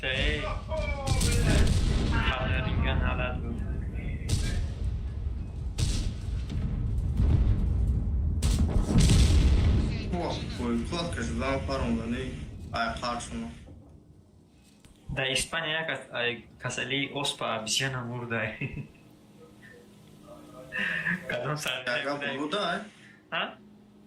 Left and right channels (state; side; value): identical; both; correlation 1.00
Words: ای. خبر رینگن حالت بود. О, ой, кладка же дала пару да не. Ай, харшуно. Da İspanya kasali ospa bisyana murda. Kadın sarı. Яга болуда, Ha?